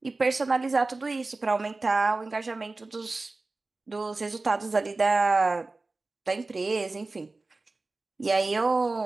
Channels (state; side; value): quieter; left; 3.4 dB